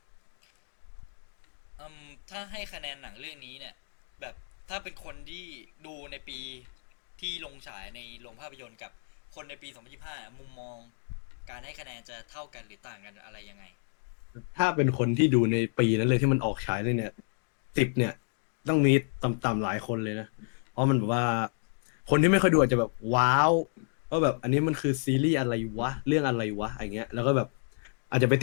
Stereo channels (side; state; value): right; silent; 58 dB below the other